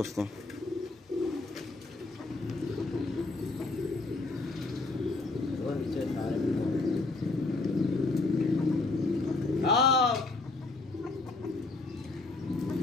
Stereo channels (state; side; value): quieter; right; 3.4 dB